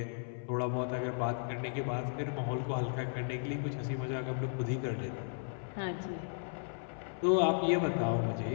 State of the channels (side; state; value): right; silent; 54 dB below the other